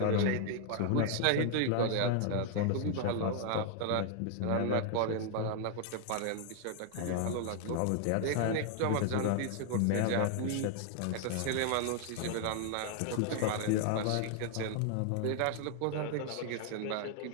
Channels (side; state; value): both; different; correlation 0.00